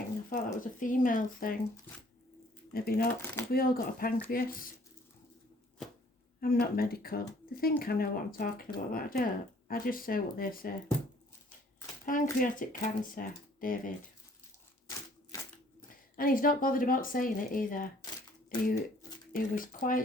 I thought that was a female thing. Maybe not. Have we all got a pancreas? I'm not medical. They think I know what I'm talking about, but I don't. I just say what they say. Pancreatic cancer, David. And he's not bothered about saying it either. He was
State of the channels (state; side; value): normal; both; correlation 0.58